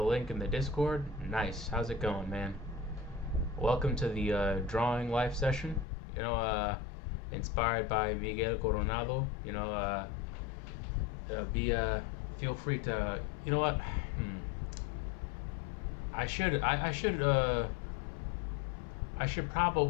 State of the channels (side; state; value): right; drops out; at 5.9 s